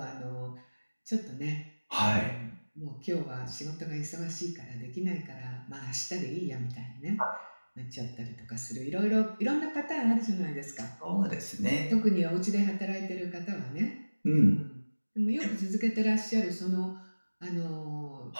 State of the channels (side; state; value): both; inverted; correlation -1.00